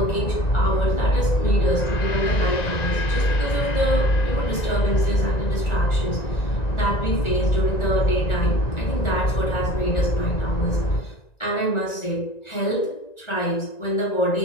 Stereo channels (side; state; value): right; late; 1.9 ms